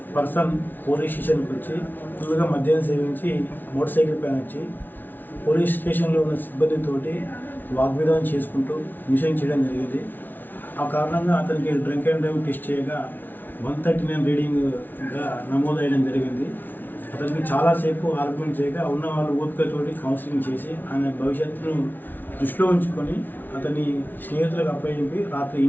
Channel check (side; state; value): right; late; 0.088 ms